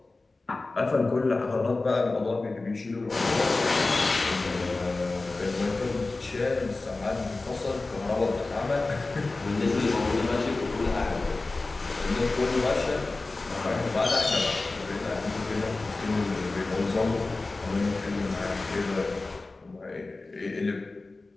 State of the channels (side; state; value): right; quieter; 3.3 dB